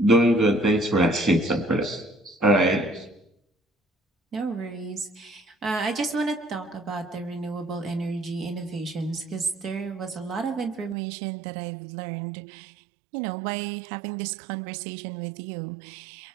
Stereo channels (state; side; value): drops out; left; at 11.0 s